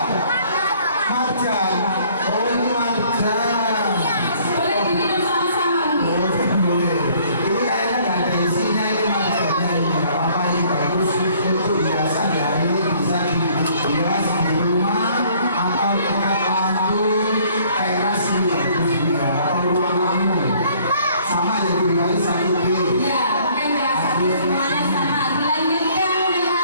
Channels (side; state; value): both; inverted; correlation -0.59